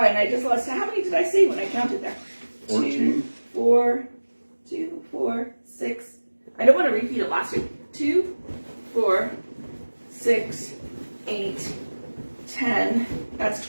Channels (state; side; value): inverted; both; correlation -1.00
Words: I just lost. How many did I say when I counted there? 14. 2, 4, 6. I don't want to repeat it last week. 2, 4, 6, 8, 10. That's